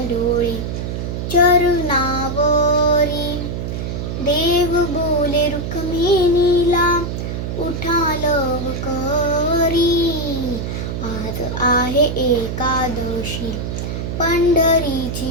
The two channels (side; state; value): right; noise; hum, 4 dB below the sound